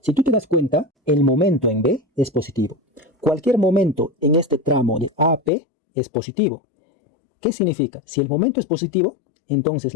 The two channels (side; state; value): right; drops out; at 5.5 s